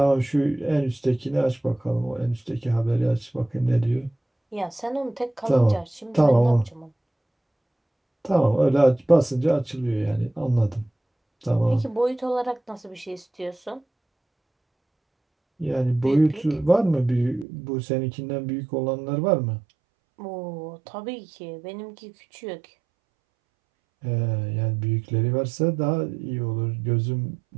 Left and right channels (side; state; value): left; drops out; at 17.4 s